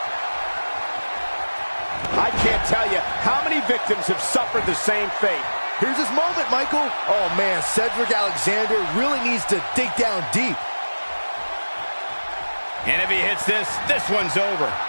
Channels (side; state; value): both; inverted; correlation -1.00